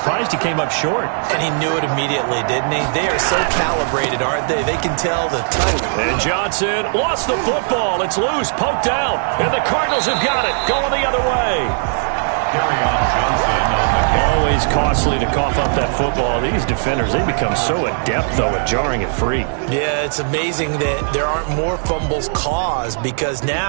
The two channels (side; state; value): left; silent; digital silence